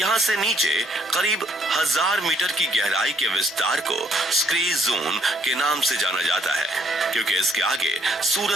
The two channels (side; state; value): both; normal; correlation 0.68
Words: से नीचे करीब 1000 मीटर की गहराई के विस्तार को स्क्रे जोन के नाम से जाना जाता है, क्योंकि इसके आगे